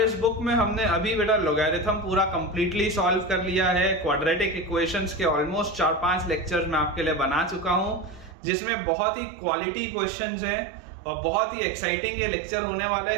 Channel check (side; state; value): left; drops out; at 8.3 s